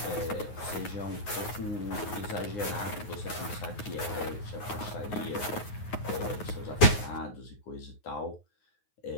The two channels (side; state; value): right; late; 9.5 ms